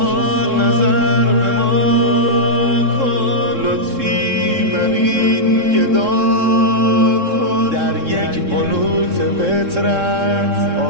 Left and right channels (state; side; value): late; left; 3.7 ms